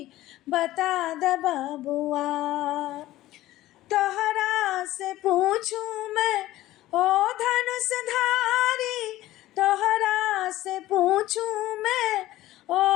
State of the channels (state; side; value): quieter; right; 15.8 dB